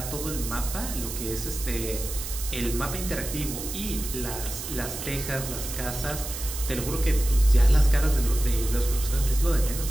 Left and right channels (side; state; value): right; noise; hiss, 8 dB below the sound